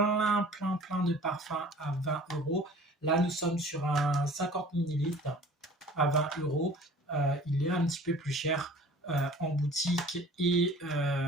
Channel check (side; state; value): both; normal; correlation 0.46